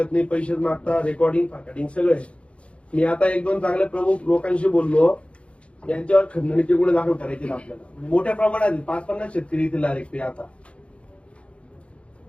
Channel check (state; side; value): late; right; 0.061 ms